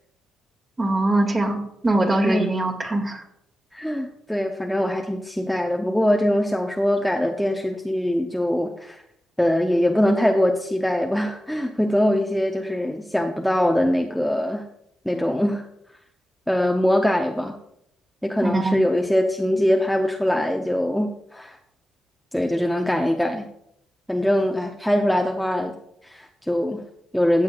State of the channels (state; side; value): normal; both; correlation 0.95